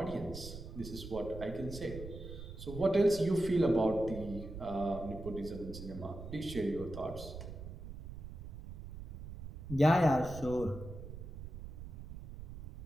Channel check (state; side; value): noise; right; rumble, 10 dB below the sound